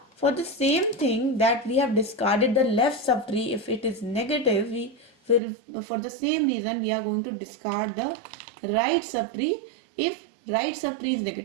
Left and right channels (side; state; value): left; drops out; at 5.4 s